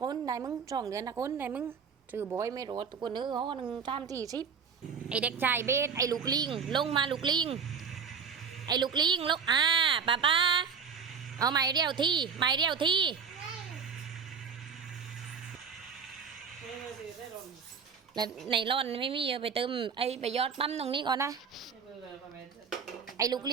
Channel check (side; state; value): left; quieter; 6.3 dB